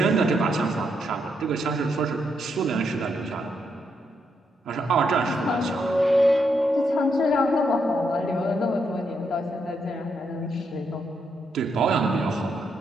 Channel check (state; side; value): normal; both; correlation 0.79